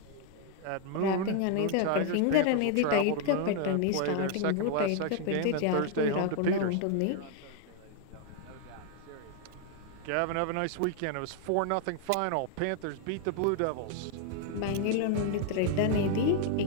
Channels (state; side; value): different; both; correlation 0.00